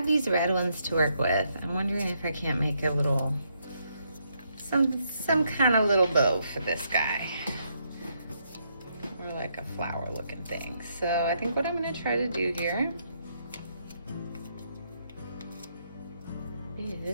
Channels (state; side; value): inverted; both; correlation -0.75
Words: these red ones to work with, I'm wondering if I can't make a little, some kind of little bow for this guy. Or like a flower looking thing. So I think what I'm gonna try to do here